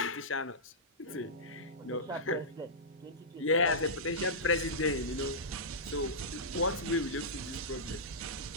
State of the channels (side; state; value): both; normal; correlation -0.14